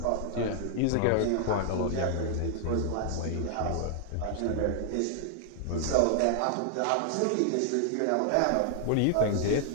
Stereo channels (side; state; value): both; different; correlation 0.00